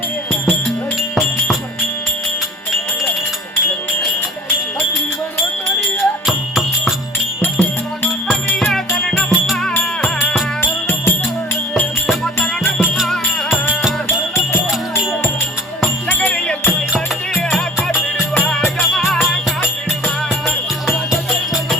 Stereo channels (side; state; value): both; normal; correlation 0.45